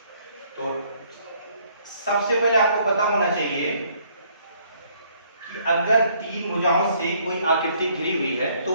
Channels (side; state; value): both; inverted; correlation -0.65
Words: तो सबसे पहले आपको पता होना चाहिए कि अगर तीन भुजाओं से कोई आकृति घिरी हुई है तो